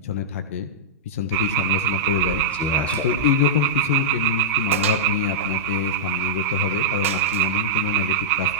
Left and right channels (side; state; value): both; normal; correlation -0.09